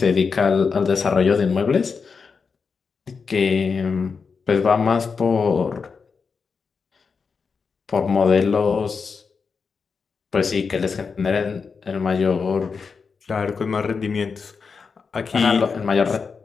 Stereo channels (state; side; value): quieter; right; 5.3 dB